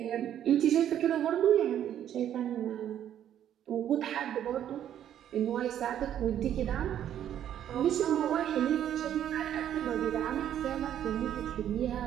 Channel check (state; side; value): quieter; left; 10.5 dB